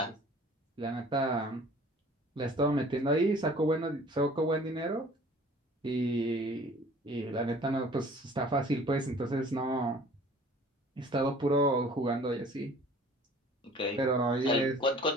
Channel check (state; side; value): normal; both; correlation 0.49